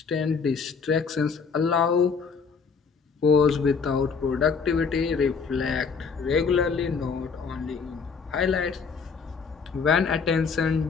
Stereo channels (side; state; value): right; quieter; 5.5 dB